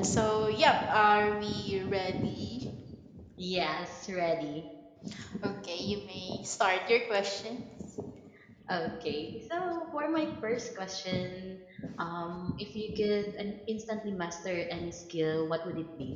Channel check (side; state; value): both; identical; correlation 1.00